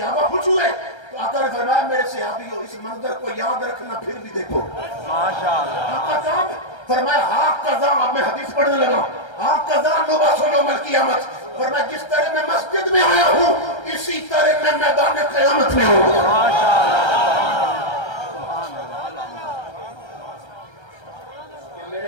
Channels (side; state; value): right; late; 1.3 ms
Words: خوش ہوئے, تو آقا نے فرمایا میرے صحابیوں اس منظر کو یاد رکھنا, پھر بھی دیکھو. آقا صاحب فرمایا ہاں قضا, اب میں حدیث پڑھنے لگا, ہاں قضا نبعث یوم القیامت. فرمایا جس طرح میں مسجد میں آیا ہوں اسی طرح میں میدان قیامت میں ہوں. میرے